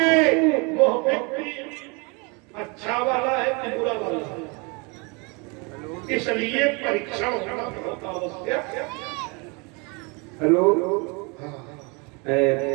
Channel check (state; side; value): quieter; left; 30.4 dB